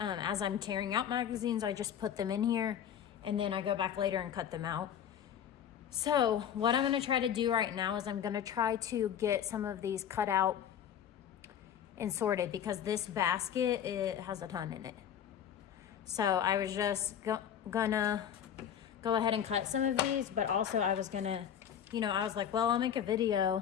I'm tearing out magazines. I just put them in here and then I go back later and cut them out. So what I'm gonna try to do right now is I'm gonna try to get some of these cut out and sorted, because this basket, it has a ton in it. So I was just gonna go ahead and cut some of these, but also I was gonna, I was like, well, I'll make a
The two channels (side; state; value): right; quieter; 9.2 dB